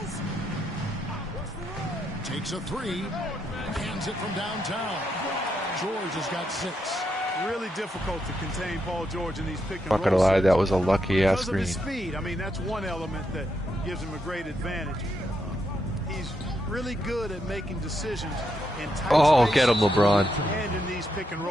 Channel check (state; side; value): normal; both; correlation 0.81